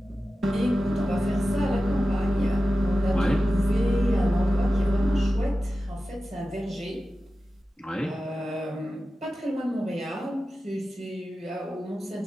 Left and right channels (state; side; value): normal; both; correlation 0.94